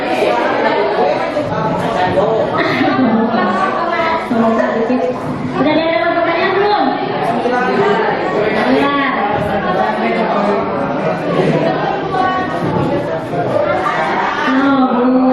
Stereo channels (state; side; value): noise; left; rumble, 27 dB below the sound